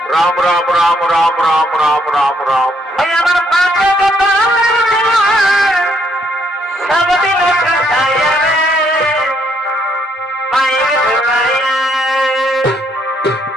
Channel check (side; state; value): both; normal; correlation 0.71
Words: রাম রাম রাম রাম রাম রাম রাম রাম।